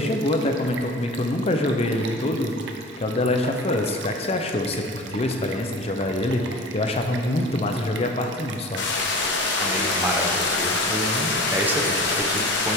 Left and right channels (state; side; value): normal; both; correlation 0.38